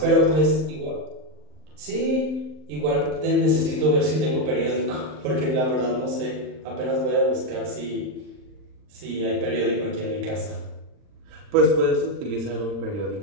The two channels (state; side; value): late; left; 39 ms